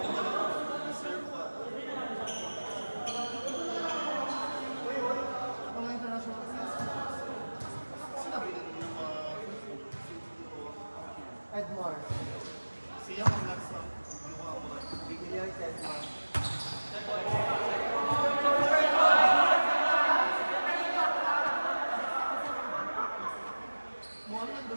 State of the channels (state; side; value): inverted; both; correlation -1.00